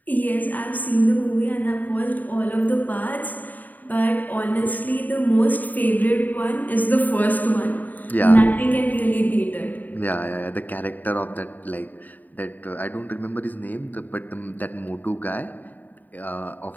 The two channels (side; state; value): right; late; 0.084 ms